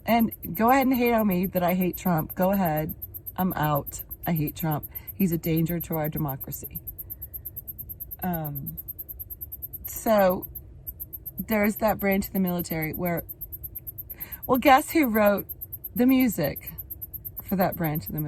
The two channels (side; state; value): both; identical; correlation 1.00